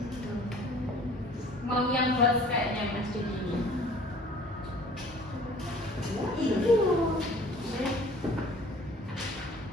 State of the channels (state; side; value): normal; both; correlation 0.50